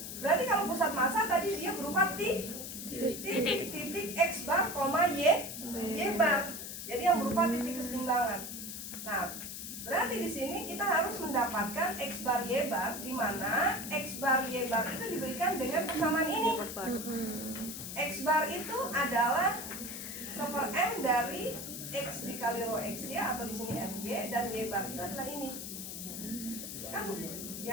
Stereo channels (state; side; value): noise; left; hiss, 8 dB below the sound